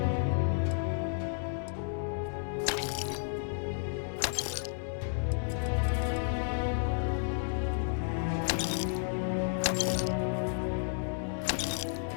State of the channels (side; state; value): right; silent; digital silence